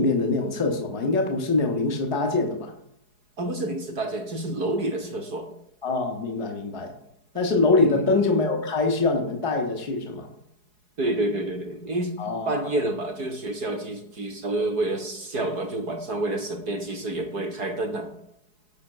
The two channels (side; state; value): left; late; 4.7 ms